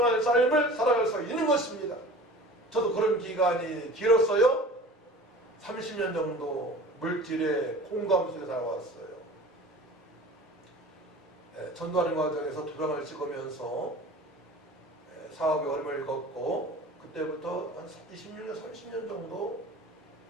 삶을 살아갈 수 있는 것입니다. 저도 그런 기간이 길었어요. 30년 정도 물질의 공감 속에 살아왔어요. 전도하는 과정에서 도장을 찍으면서 사업에 어려움을 겪고 그때부터 한 26년, 30년 정도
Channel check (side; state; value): both; normal; correlation 0.41